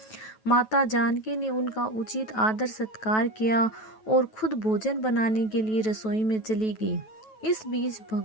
माता जानकी ने उनका उचित आदर सत्कार किया और खुद भोजन बनाने के लिए रसोई में चली गई। इस बीच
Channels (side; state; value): right; late; 9.2 ms